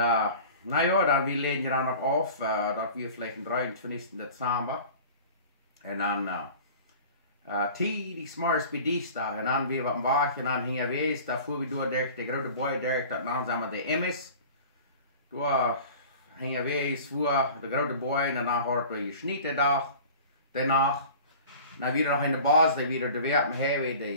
ja, dan we leden dan nog af, dat we vielleicht am 23. Dezember. En dan die s'morgens bij dienstdag. En dan weer wat wacht en dan gingen we eens, daar voeren we door de grote boy door, dat naam zijn we de Emmis. Door gingen we eens voor de grote boy en dan hadden we gesnitten dag, daarna. Dan weer nog in de baas, die weer de werken hebben,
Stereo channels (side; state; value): both; inverted; correlation -0.42